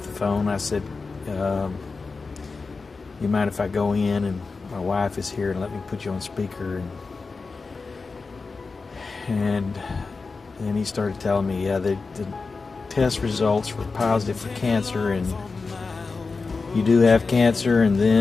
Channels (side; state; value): right; quieter; 4.3 dB